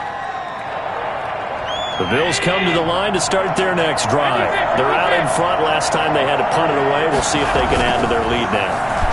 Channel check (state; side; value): identical; both; correlation 1.00